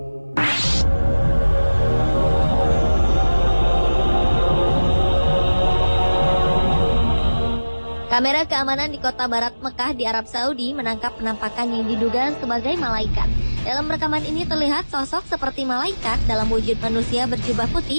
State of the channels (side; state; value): both; inverted; correlation -1.00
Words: Kamera keamanan di kota barat Mekah di Arab Saudi menangkap penampakan yang diduga sebagai malaikat. Dalam rekaman ini terlihat sosok seperti malaikat dalam wujud manusia berjubah